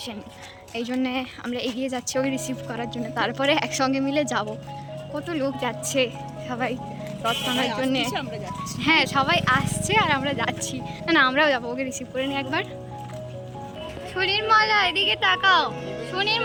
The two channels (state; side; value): identical; both; correlation 1.00